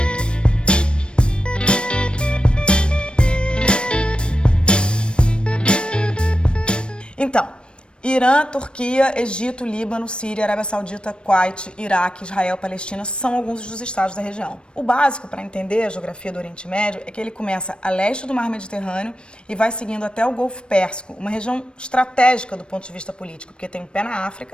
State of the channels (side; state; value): right; late; 0.056 ms